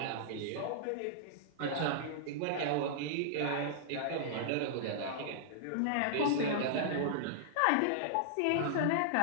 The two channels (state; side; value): different; both; correlation -0.02